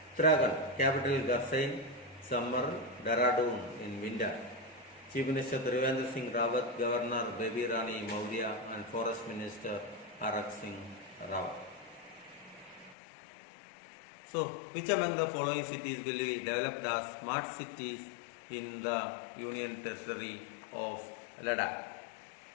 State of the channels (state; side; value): drops out; right; at 13.0 s